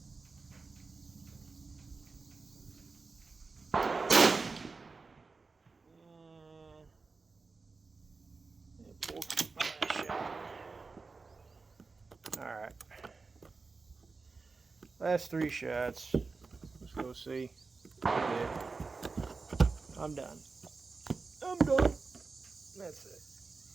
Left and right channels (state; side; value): quieter; left; 4.2 dB